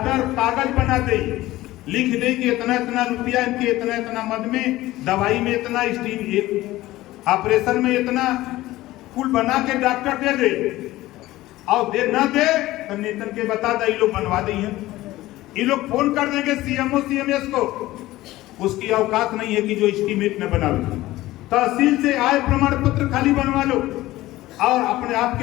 कागज बना दे, लिख दे कि इतना इतना रुपया, इनके इतना इतना मद में, दवाई में इतना, ऑपरेशन में इतना, कुल बना के डॉक्टर दे दे। और दे ना दे तो नेतन के बता दे, ये लोग बनवा दे, ये लोग फोन कर देंगे सीएमओ सीएमएस को, उसकी औकात नहीं है कि जो एस्टीमेट न बनावे। तहसील से आय प्रमाण पत्र खाली बनवा लो, और अपने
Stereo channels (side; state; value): right; quieter; 16.9 dB